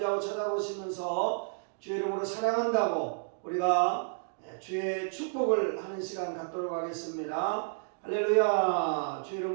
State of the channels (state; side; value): silent; left; digital silence